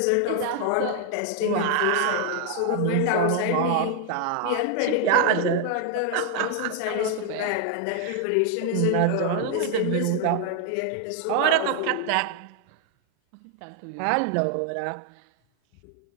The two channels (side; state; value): both; different; correlation 0.00